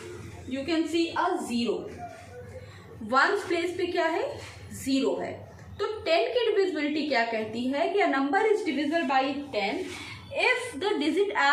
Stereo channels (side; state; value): both; identical; correlation 1.00